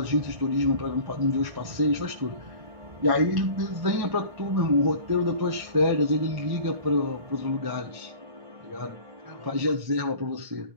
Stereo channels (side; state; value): left; late; 1.7 ms